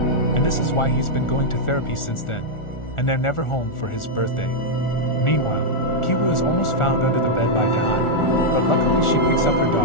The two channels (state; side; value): late; right; 1.4 ms